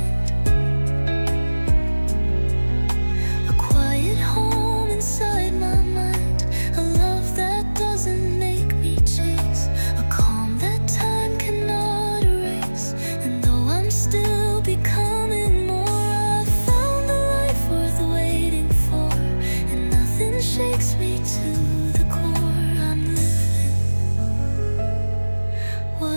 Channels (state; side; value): inverted; both; correlation -1.00